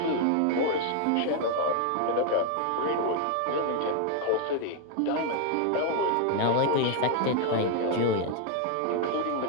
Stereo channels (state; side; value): different; both; correlation 0.00